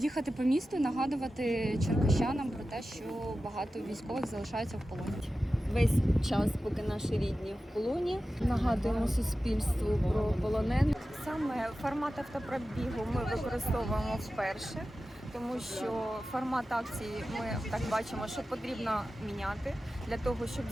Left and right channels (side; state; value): both; normal; correlation 0.94